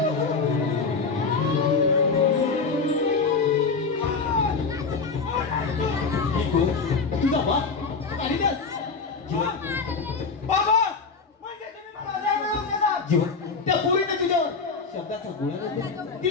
तुझा बाप बाबा म्हणजे तुम्ही मला मिळवून देणार. जीवन त्या पोरीने तुझ्यावर शब्दाचा गोळा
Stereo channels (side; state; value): right; quieter; 4.7 dB